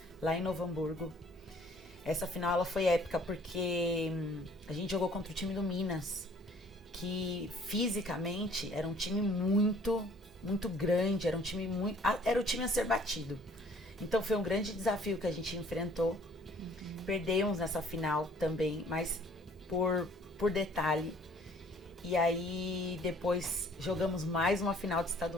lá em Novo Hamburgo. Essa final ela foi épica porque a gente jogou contra o time do Minas, que fisicamente era um time muito grande, era um time era o time a ser batido. Então foi um grande desafio que a gente enfrentou. Perdemos nessa final também, mas por detalhe. E aí depois jogamos mais uma final de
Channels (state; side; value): normal; both; correlation 0.56